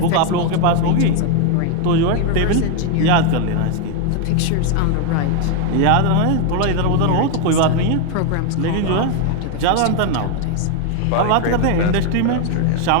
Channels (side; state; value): both; different; correlation 0.01